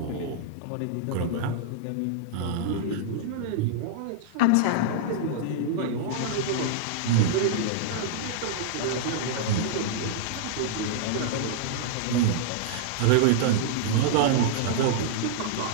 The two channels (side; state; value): both; different; correlation -0.02